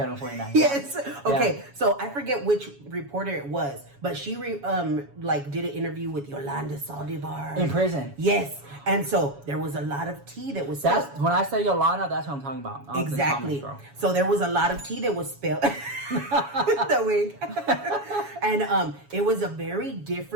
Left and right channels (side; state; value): left; late; 7.2 ms